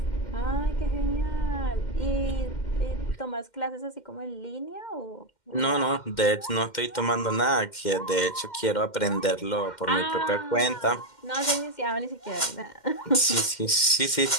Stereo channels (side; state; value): right; late; 2.1 ms